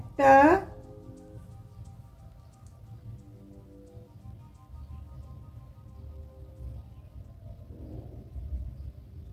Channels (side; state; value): both; identical; correlation 1.00